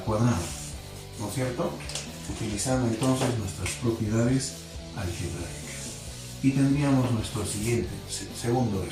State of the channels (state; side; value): identical; both; correlation 1.00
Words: cuadrado, ¿no es cierto? Utilizando entonces nuestras propiedades algebraicas y tendríamos nuestro siguiente, segundo